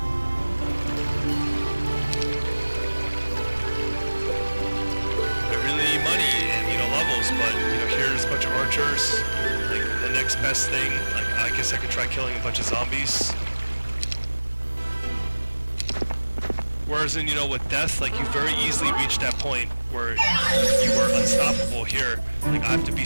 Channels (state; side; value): inverted; both; correlation -1.00